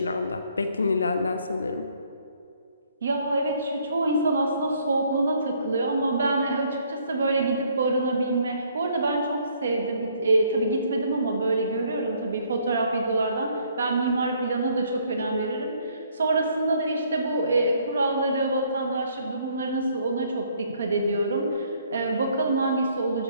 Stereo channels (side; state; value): both; inverted; correlation -0.65